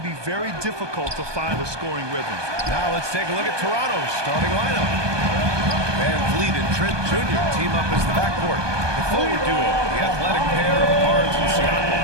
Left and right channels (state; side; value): late; left; 1.2 ms